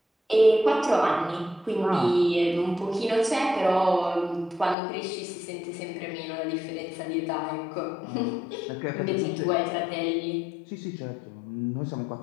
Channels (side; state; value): right; drops out; at 4.8 s